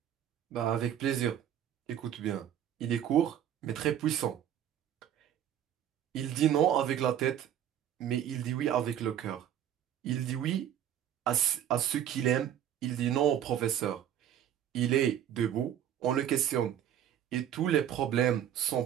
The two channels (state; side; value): quieter; left; 10.4 dB